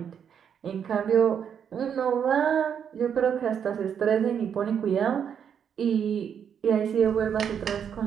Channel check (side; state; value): left; quieter; 8.0 dB